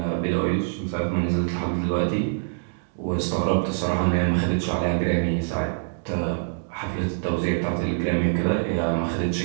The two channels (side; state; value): left; silent; digital silence